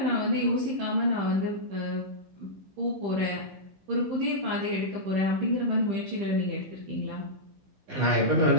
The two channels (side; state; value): left; late; 15 ms